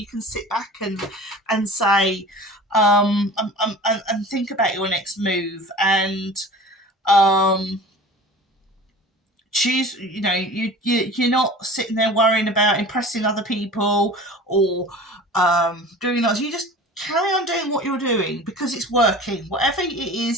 can sit back and say and think about your next move and choose, you know, you're not sitting there worrying about impressing other people or doing that. You just carry on doing what you're doing because it's working. Whatever it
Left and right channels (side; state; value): both; normal; correlation 0.39